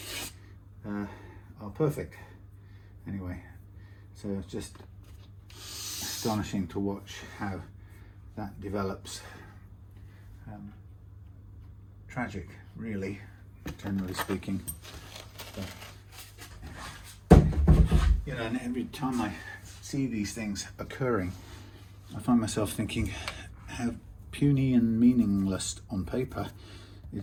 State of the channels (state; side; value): identical; both; correlation 1.00